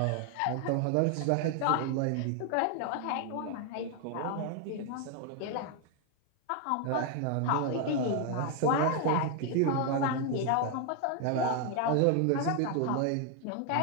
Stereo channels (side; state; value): both; different; correlation 0.00